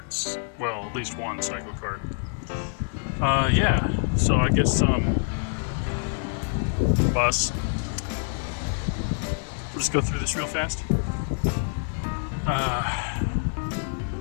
Well, at least one Cyclekart. Yeah, so I guess bus. We'll just go through this real fast.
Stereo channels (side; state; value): right; silent; digital silence